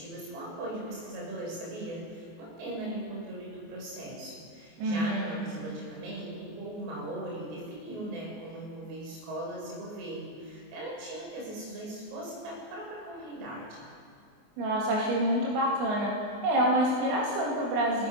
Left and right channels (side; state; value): left; late; 24 ms